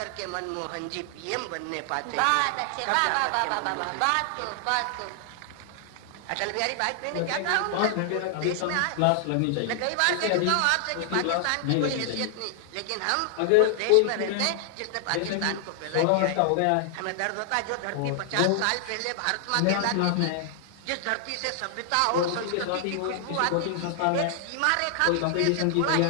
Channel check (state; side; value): different; both; correlation 0.00